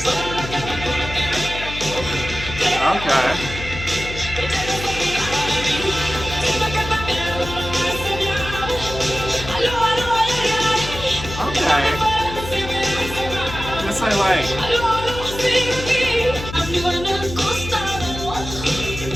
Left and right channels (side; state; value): left; noise; hum, 9 dB below the sound